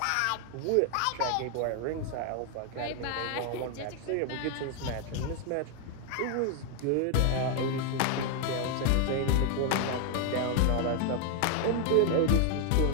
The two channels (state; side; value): different; both; correlation 0.00